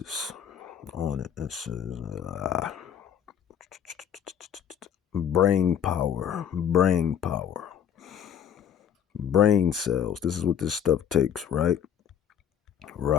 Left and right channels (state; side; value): quieter; right; 8.9 dB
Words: on it. It says, brain power, brain cells. This is what this stuff takes, right?